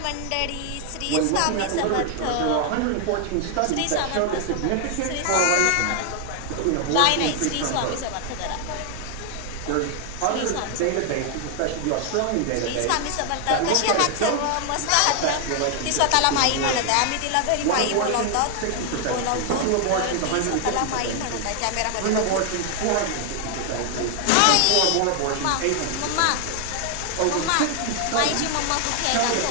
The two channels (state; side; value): different; both; correlation 0.00